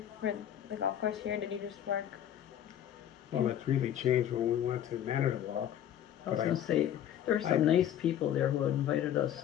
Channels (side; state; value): right; quieter; 10.5 dB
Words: for the golf course here? Did you just work? Well, it really changed when we went to Manitowoc. I was But gonna say, there were some nice people there who invited us